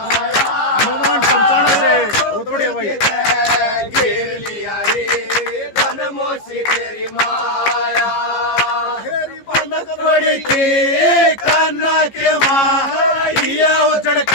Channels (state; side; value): late; right; 15 ms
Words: हनुमान पंचानन से बहुत बढ़िया भाई घेर लिया रे धन मौसी तेरी माया हेरी बनक पड़ी थी कान्ना के माँ ये उजड़